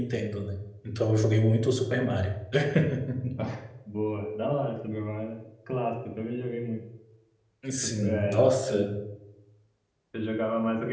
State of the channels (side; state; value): both; identical; correlation 1.00